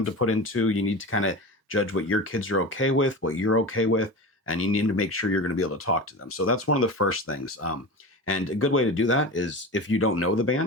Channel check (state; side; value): normal; both; correlation 0.28